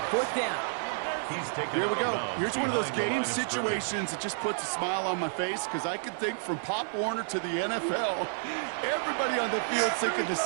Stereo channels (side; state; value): left; silent; 57 dB below the other